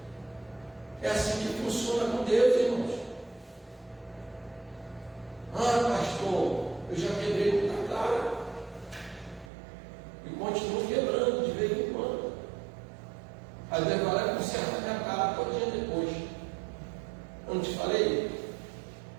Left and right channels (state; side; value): drops out; left; at 9.5 s